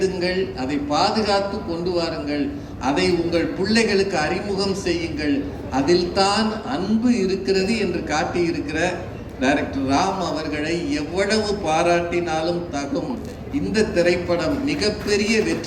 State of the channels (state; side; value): identical; both; correlation 1.00